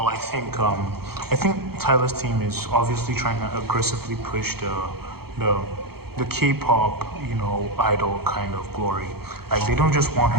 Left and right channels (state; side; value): late; left; 0.96 ms